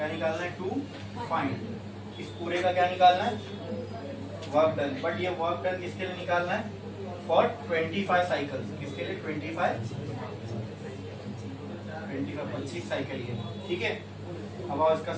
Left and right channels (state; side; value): identical; both; correlation 1.00